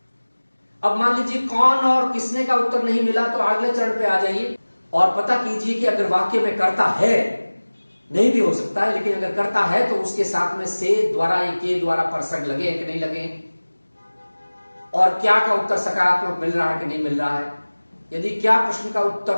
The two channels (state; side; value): inverted; both; correlation -1.00